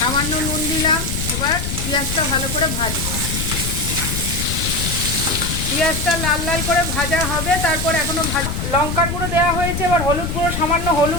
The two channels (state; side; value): noise; left; rumble, 3 dB below the sound